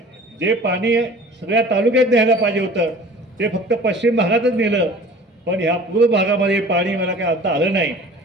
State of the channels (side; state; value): both; normal; correlation 0.44